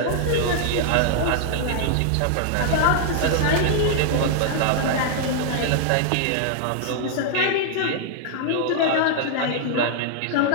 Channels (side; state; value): both; different; correlation -0.01